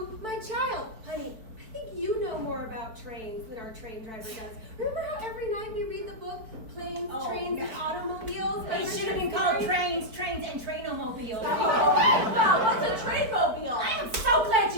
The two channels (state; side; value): late; left; 4.5 ms